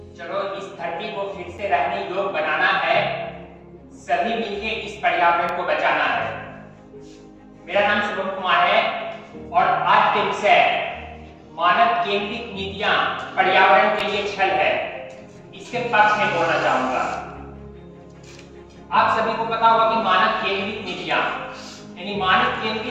इस धरती को फिर से रहने योग्य बनाना है, सभी मिलकर इस पर्यावरण को बचाना है। मेरा नाम शुभम कुमार है और आज के विषय मानव केंद्रित नीतियां पर्यावरण के लिए छल है, इसके पक्ष में बोलना चाहूंगा। आप सभी को पता होगा कि मानव केंद्रित नीतियां यानी मानव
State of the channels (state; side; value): identical; both; correlation 1.00